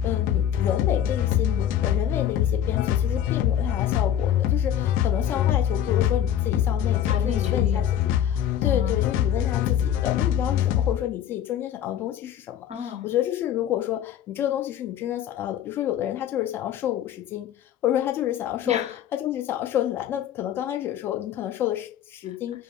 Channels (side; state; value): right; quieter; 10.4 dB